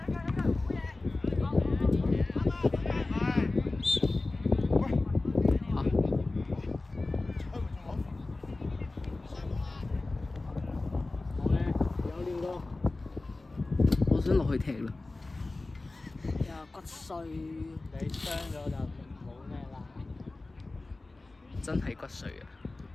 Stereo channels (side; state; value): right; quieter; 3.2 dB